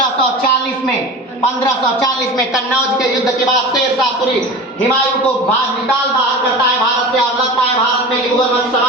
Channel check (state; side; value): normal; both; correlation 0.33